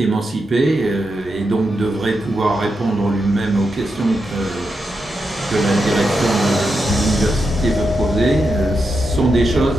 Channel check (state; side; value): normal; both; correlation 0.86